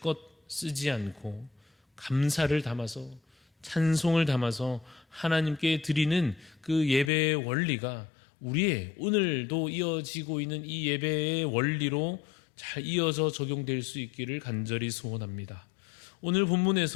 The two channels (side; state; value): right; drops out; at 7.1 s